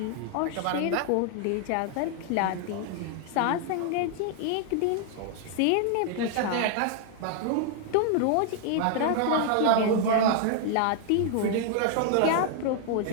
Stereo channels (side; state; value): both; different; correlation 0.00